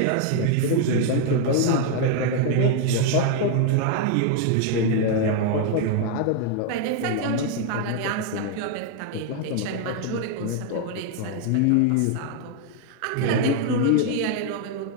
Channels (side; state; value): both; different; correlation 0.00